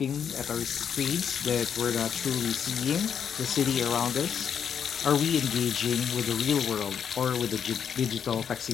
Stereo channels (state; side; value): quieter; right; 7.8 dB